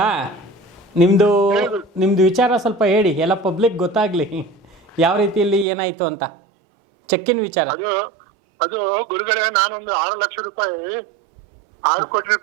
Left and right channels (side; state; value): left; drops out; at 5.7 s